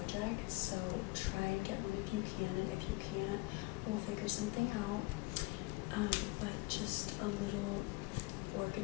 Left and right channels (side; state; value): right; quieter; 24.2 dB